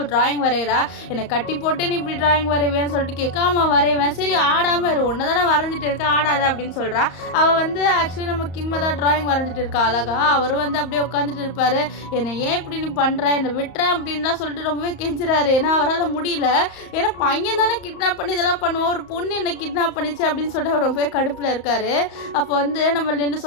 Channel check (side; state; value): right; late; 34 ms